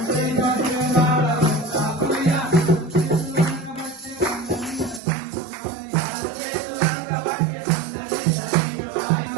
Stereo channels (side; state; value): left; drops out; at 5.0 s